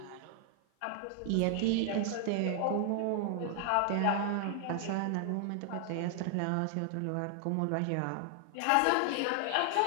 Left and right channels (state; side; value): different; both; correlation 0.00